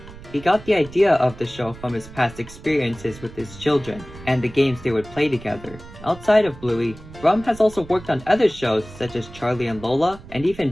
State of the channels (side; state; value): right; noise; rumble, 17 dB below the sound